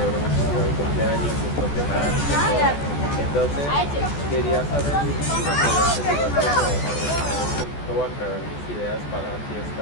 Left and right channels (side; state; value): right; late; 14 ms